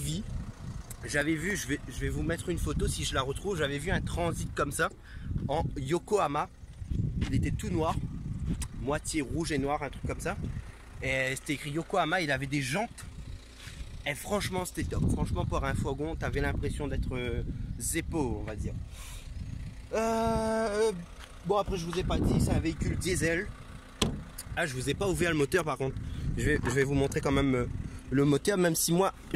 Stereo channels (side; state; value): both; identical; correlation 1.00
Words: j'avais vu, je vais vous mettre une photo si je la retrouve, j'avais vu un transit comme ça en Yokohama. Il était tout noir, moitié rouge et noir, un truc comme ça, et c'était écrit Yokohama. Il avait des jantes et franchement c'était top. Franchement pour un fourgon t'avais l'impression d'être Zeppo, on va dire. Bon, après je vous ai pas dit, c'est un véhicule diesel. Ah, je vous ai pas ouvert le moteur par contre. Je vais vous montrer quand même le moteur, même si moi